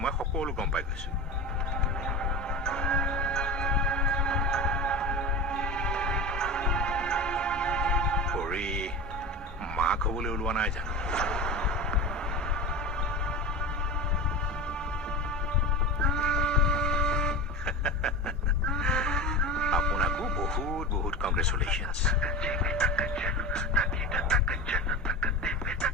মই সকলো গম পাই গৈছো পৰি মাক হ'বলৈ ওলোৱা নাই জানো আপোনাকো বহুত বহুত কংগ্ৰেচুলেশ্যনছ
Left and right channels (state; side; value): normal; both; correlation 0.27